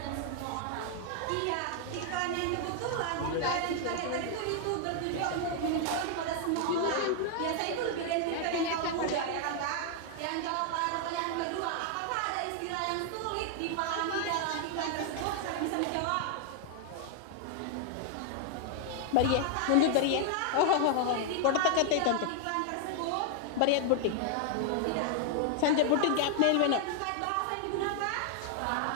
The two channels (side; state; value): both; different; correlation 0.00